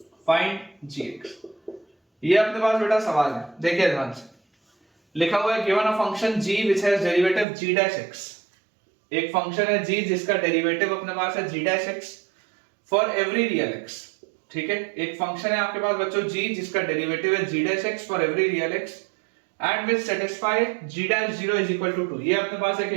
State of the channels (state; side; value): drops out; left; at 7.5 s